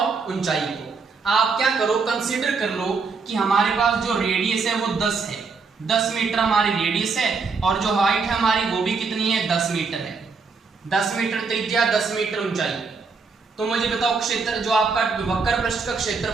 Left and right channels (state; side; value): quieter; left; 4.8 dB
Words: ऊंचाई को। आप क्या करो कंसीडर कर लो कि हमारे पास जो रेडियस है वो 10 है, 10 मीटर हमारी रेडियस है और जो हाइट है हमारी वो भी कितनी है 10 मीटर है, 10 मीटर त्रिज्या 10 मीटर ऊंचाई। तो मुझे बताओ क्षेत्र जो आपका वक्र पृष्ठ का